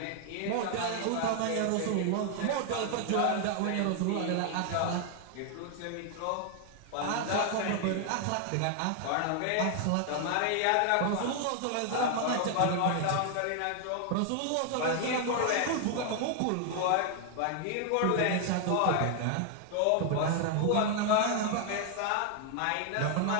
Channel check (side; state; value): both; different; correlation 0.00